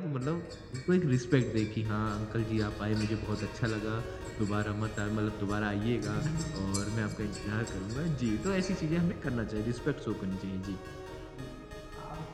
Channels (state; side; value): identical; both; correlation 1.00